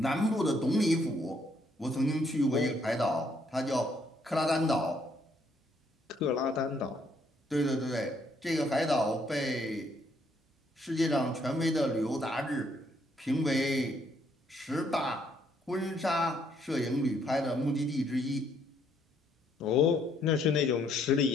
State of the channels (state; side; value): normal; both; correlation 0.69